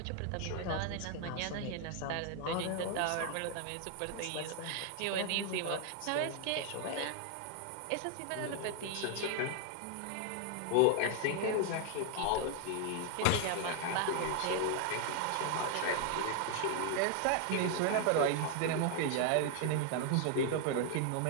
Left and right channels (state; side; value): different; both; correlation 0.00